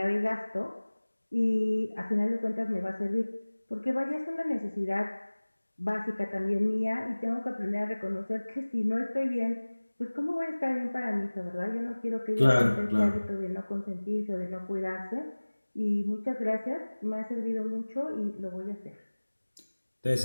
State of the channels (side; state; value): both; inverted; correlation -1.00